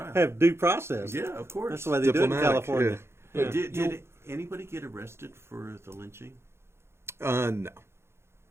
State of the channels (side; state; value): left; late; 0.12 ms